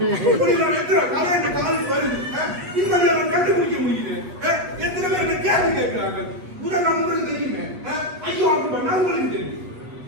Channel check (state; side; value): late; left; 8.2 ms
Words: இப்படி கதை இந்த காலேஜ் வருது, இப்படி அவன் கண்டுபிடிக்க முடியுது. எத்தனை பேர் என்ன கேள்வி கேட்கிறார்கள்? முதல் உங்களுக்கு தெரியுமே, ஐயோ அவங்க பண்ணா உங்களுக்கு தெரியும்.